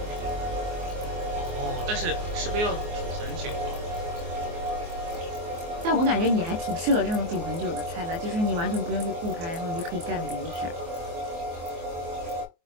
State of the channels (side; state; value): left; late; 24 ms